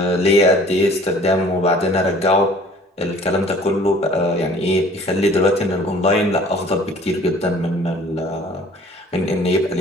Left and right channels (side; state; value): both; normal; correlation 0.52